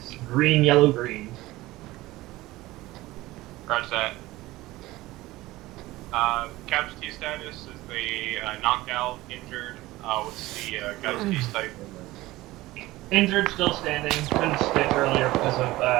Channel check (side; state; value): left; quieter; 18.3 dB